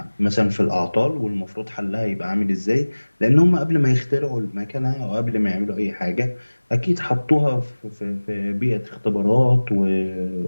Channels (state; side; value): inverted; both; correlation -1.00